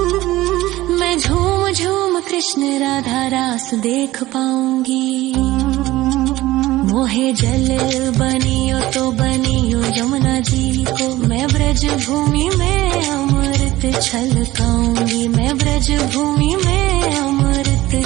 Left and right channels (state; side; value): quieter; left; 17.1 dB